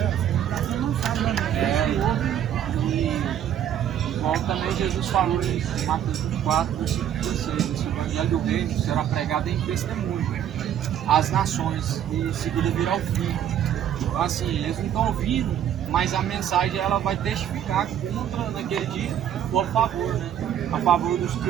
Igual também Jesus falou em Mateus 24, versículo 16, esse evangelho do reino será pregado em testemunho às nações e em seguida virá o fim. Então, assim, eles não estão ouvindo, mas a mensagem ela vai testificar contra naquele dia ou a favor, né? A favor dos que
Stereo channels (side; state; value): left; quieter; 10.1 dB